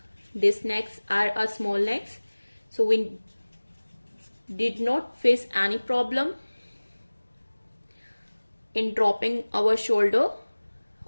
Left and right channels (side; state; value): both; inverted; correlation -1.00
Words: These necks are a small necks, so we did not face any problem in dropping our shoulder,